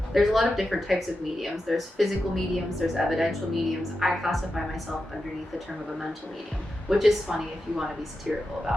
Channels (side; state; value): both; normal; correlation 0.89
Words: there's a lot of different types of mediums. There's physical mediums, there's evidential mediums. I classify myself underneath the term of a mental medium, which is funny if you want to be satirical